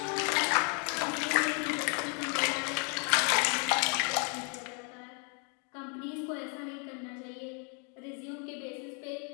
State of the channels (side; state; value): right; quieter; 37.8 dB